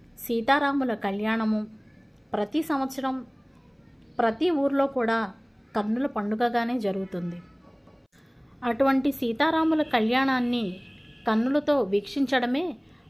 సీతారాముల కళ్యాణము ప్రతి సంవత్సరం ప్రతి ఊర్లో కూడా కన్నుల పండుగగానే జరుగుతుంది. అటువంటి సీతారాముల కళ్యాణాన్ని కన్నులతో వీక్షించడమే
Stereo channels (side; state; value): both; identical; correlation 1.00